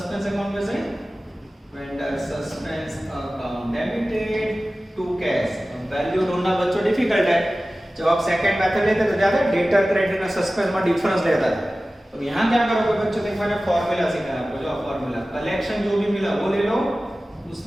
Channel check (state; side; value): normal; both; correlation 0.96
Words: अकाउंट में से। Vendor suspense account debited to cash. अब वैल्यू ढूंढना बच्चों डिफिकल्ट है। जब आप सेकंड मेथड लेते तो ज्यादा डेटर क्रेडिट और सस्पेंस में डिफरेंस लेता था। तो यहां क्या करोगे बच्चों? देखो मैंने फार्मूला सिखाया आपको। जो फार्मूला कलेक्शन जो भी मिला वो ले लो,